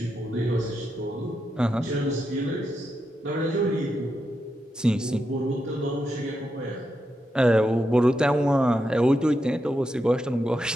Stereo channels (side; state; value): both; normal; correlation 0.85